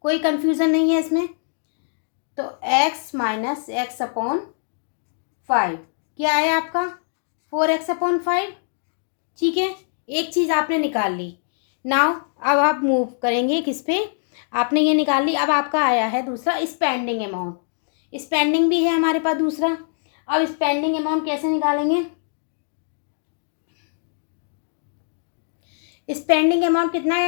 कोई कंफ्यूजन नहीं है इसमें। तो x माइनस x/5 क्या आया आपका, 4x/5। ठीक है, एक चीज़ आपने निकाल ली। नाउ अब आप मूव करेंगे किस पे, आपने ये निकाल ली। अब आपका आया है दूसरा स्पेंडिंग अमाउंट, स्पेंडिंग भी है हमारे पास दूसरा। अब स्पेंडिंग अमाउंट कैसे निकालेंगे, स्पेंडिंग अमाउंट कितना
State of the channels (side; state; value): right; silent; digital silence